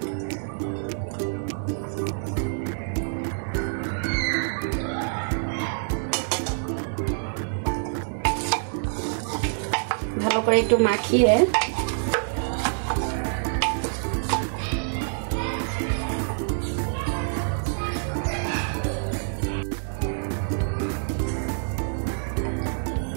ভালো করে একটু মাখিয়ে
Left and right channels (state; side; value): silent; left; digital silence